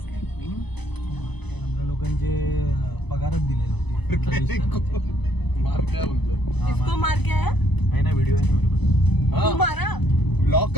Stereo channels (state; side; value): late; right; 0.99 ms